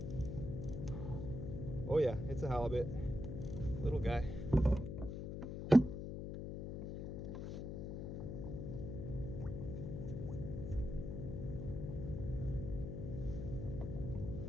Oh yeah, it's a halibut. Little guy.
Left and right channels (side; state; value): left; noise; hum, 5 dB below the sound